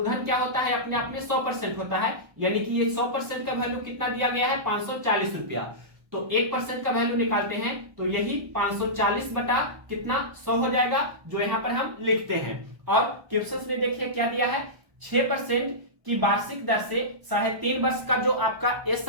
क्या होता है? अपने आप में 100% होता है, यानी कि ये 100% का वैल्यू कितना दिया गया है? 540 रुपया। तो 1% का वैल्यू निकालते हैं तो यही 540 बटा कितना? 100 हो जाएगा, जो यहाँ पर हम लिखते हैं। और क्वेश्चन में देखिए क्या दिया है? 6% की वार्षिक दर से 3.5 वर्ष का जो आपका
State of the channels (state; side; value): late; left; 1.1 ms